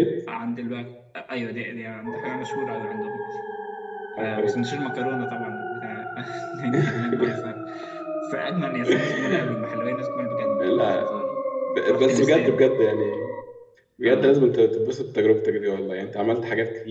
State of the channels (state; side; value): identical; both; correlation 1.00